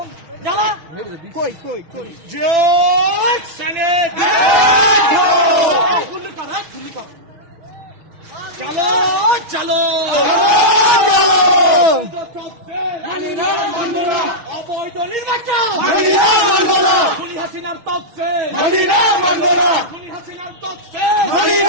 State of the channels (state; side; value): late; left; 6.4 ms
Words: জ্বালা কই কই কই জয় সেনেট গুলি কর গুলি কর চলো চলো চলো মানি না মানব না অবৈধ নির্বাচন মানি না মানব না খুনি হাসিনার তকসে মানি না মানব না খুনি হাসিনার তকসে মানি